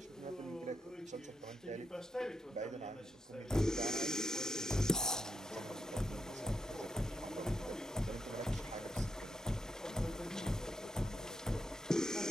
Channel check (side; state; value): both; normal; correlation 0.82